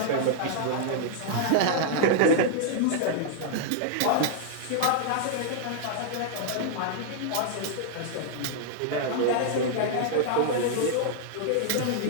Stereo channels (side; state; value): both; different; correlation -0.01